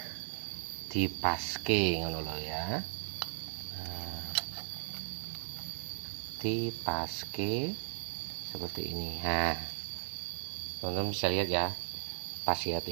dipaske ngono lho ya. Nah, dipaske seperti ini. Nah, teman-teman bisa lihat ya, pas ya,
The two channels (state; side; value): silent; left; digital silence